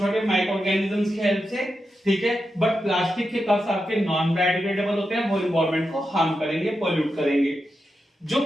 माइक्रो ऑर्गेनिजम्स की हेल्प से, ठीक है। बट प्लास्टिक के कप्स आपके नॉन बायोडिग्रेडेबल होते हैं, वो एनवायरमेंट को हार्म करेंगे, पोल्यूट करेंगे। जो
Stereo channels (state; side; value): normal; both; correlation 0.88